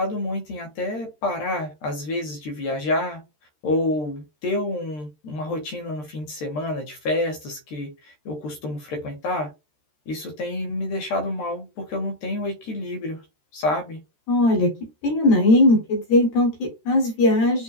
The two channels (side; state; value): right; late; 13 ms